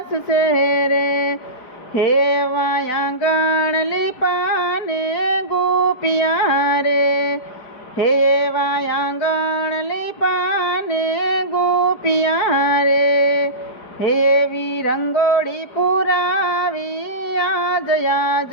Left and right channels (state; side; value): late; right; 4.9 ms